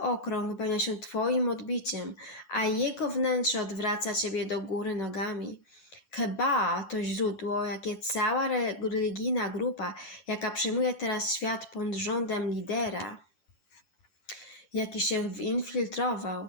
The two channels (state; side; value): late; right; 10 ms